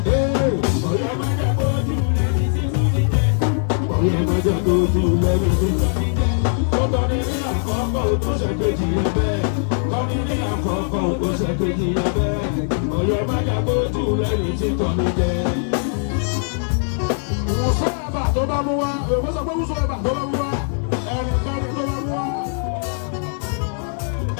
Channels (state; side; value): silent; right; 65 dB below the other